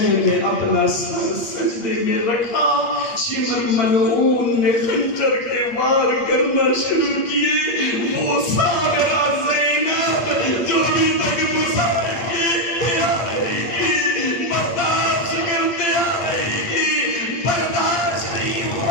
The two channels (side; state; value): right; late; 8.6 ms